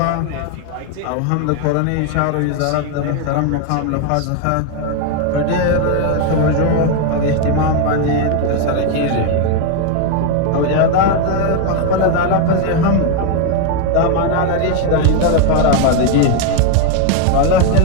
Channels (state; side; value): different; both; correlation 0.01